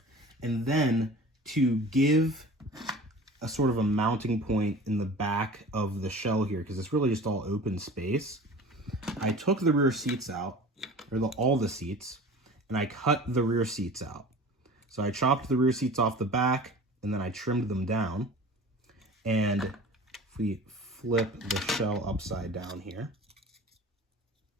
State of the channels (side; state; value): both; normal; correlation 0.40